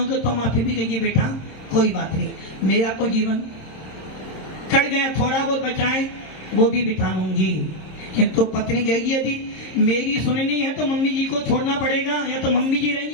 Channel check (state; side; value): late; right; 26 ms